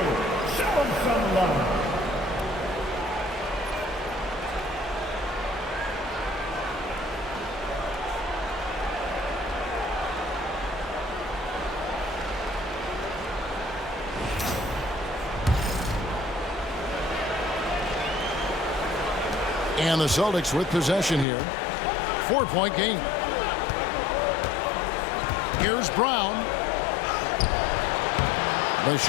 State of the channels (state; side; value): drops out; right; at 21.2 s